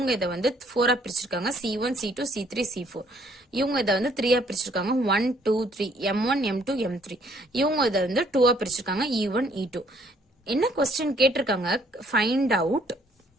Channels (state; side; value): normal; both; correlation 0.64